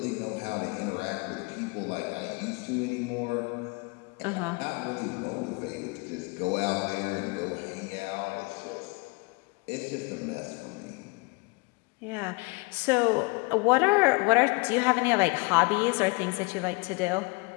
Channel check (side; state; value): right; quieter; 28.1 dB